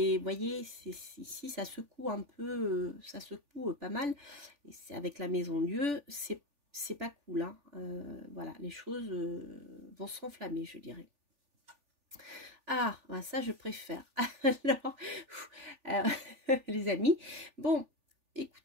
voyez, ici, ça secoue un peu, ça secoue pas mal. Et c'est avec la Maison Dieu, c'est pas cool. Hein. Voilà, les choses vont s'enflammer, je dirais. Ah, ça je préfère. Alors, les amis, bon,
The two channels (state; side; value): late; left; 3.4 ms